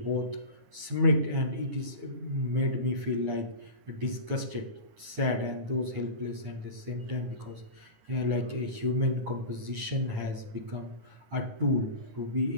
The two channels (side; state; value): left; late; 9.7 ms